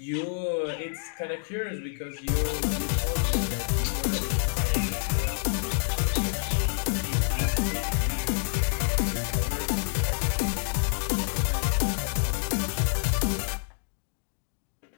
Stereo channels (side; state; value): right; silent; digital silence